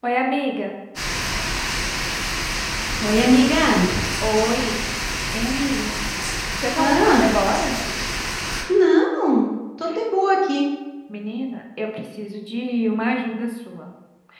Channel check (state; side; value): identical; both; correlation 1.00